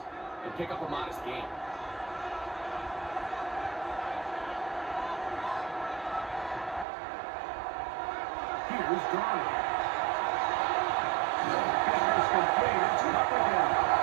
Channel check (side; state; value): left; drops out; at 6.9 s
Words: and pick up a modest gain. Here's Darnold. Business complete. It's up again.